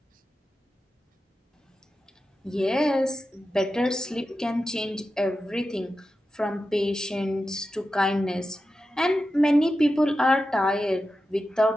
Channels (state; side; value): normal; both; correlation 0.91